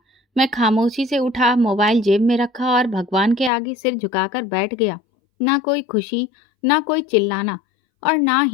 मैं खामोशी से उठा, मोबाइल जेब में रखा और भगवान के आगे सिर झुकाकर बैठ गया। ना कोई खुशी, ना कोई चिल्लाना और ना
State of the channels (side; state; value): right; drops out; at 3.5 s